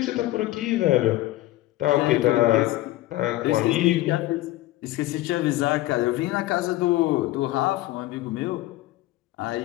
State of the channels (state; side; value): quieter; right; 16.7 dB